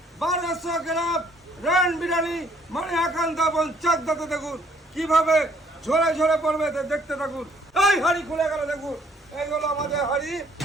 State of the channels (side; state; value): both; normal; correlation 0.63